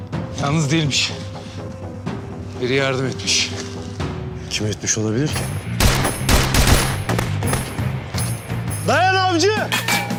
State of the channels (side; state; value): both; identical; correlation 1.00